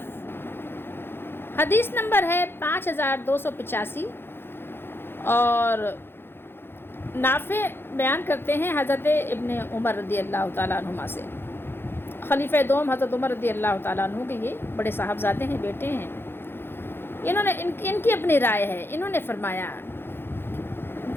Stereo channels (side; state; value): right; late; 0.11 ms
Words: حدیث نمبر ہے 5285 اور نافع بیان کرتے ہیں حضرت ابن عمر رضی اللہ تعالیٰ عنہما سے. خلیفہ دوم حضرت عمر رضی اللہ تعالیٰ عنہ کے یہ بڑے صاحبزادے ہیں، بیٹے ہیں. انہوں نے ان کی اپنی رائے ہے. انہوں نے فرمایا،